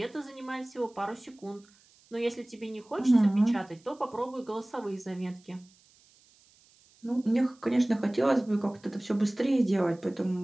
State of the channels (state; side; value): noise; right; hiss, 30 dB below the sound